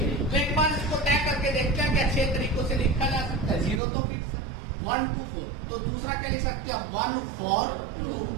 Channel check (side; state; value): left; drops out; at 3.8 s